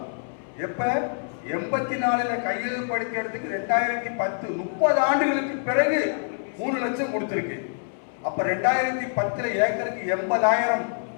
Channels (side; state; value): right; silent; 61 dB below the other